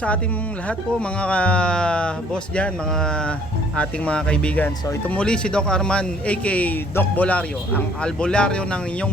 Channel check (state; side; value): normal; both; correlation 0.60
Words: ating lahat po mga boss dyan, mga ating mga kaibigan. So ito muli si Doc Arman aka Doc Bolario, ang albularyo ng inyong